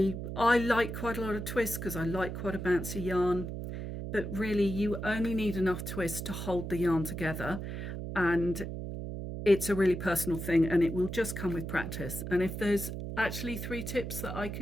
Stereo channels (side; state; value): right; noise; hum, 6 dB below the sound